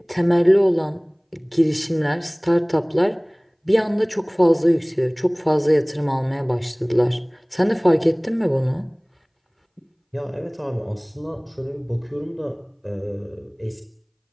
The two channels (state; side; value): identical; both; correlation 1.00